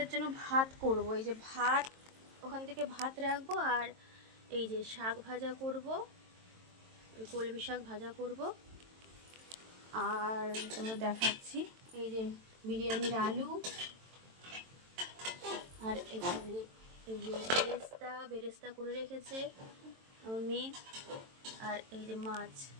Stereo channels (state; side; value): late; left; 22 ms